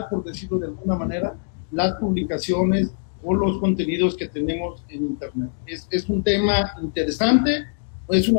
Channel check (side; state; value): right; silent; digital silence